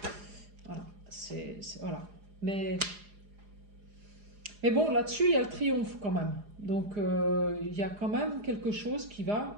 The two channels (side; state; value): left; late; 4.9 ms